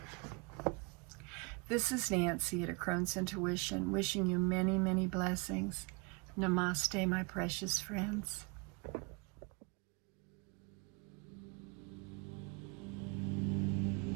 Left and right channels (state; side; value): quieter; left; 30.6 dB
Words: This is Nancy at A Crone's Intuition, wishing you many, many blessings. Namaste, my precious friends.